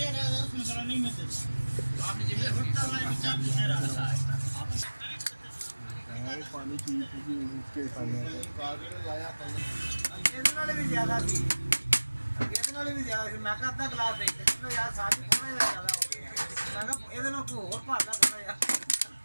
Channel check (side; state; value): both; inverted; correlation -1.00